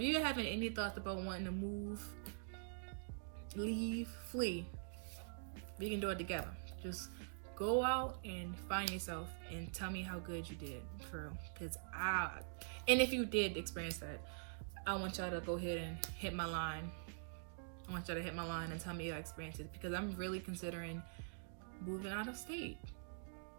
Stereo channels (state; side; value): silent; left; digital silence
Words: you're having any thoughts about wanting to move, leave, flee, we can do it together. Just go out and find yourself and tell me how good you did, for real. And if you did experience that, I want y'all to go ahead and hit my line. I want y'all to hit my line and tell me your experiences, because I'm really considering moving out of state.